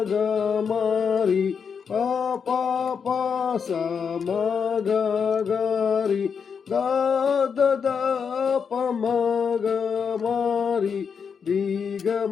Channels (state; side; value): quieter; right; 6.4 dB